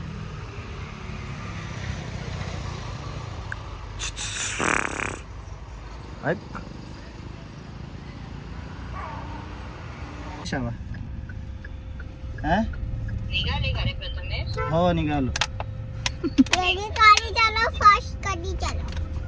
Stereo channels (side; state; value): both; identical; correlation 1.00